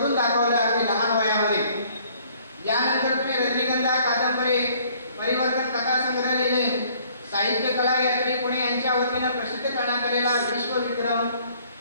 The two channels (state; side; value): inverted; both; correlation -0.59